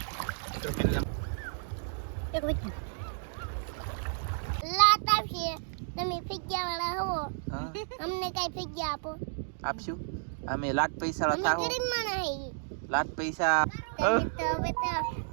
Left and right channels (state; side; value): silent; left; digital silence